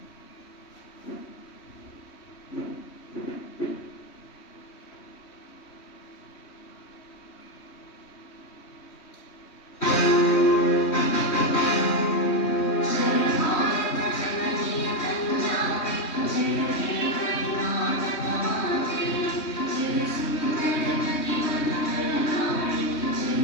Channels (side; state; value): right; late; 3.2 ms